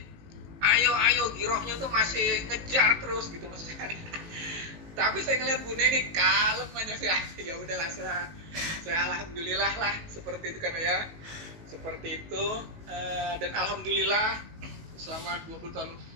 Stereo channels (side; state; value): left; late; 19 ms